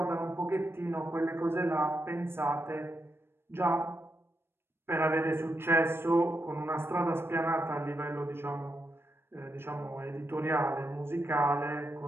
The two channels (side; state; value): left; late; 0.12 ms